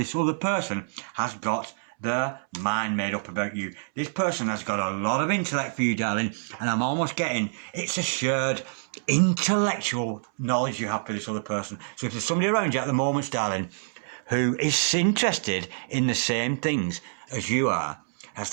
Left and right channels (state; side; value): silent; left; 60 dB below the other